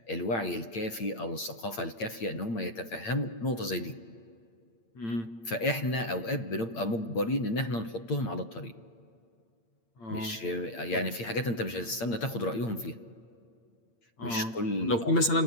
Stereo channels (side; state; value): right; late; 8.8 ms